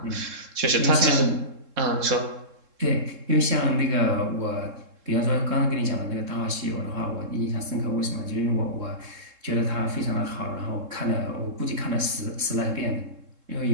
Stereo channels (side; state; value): left; late; 3.7 ms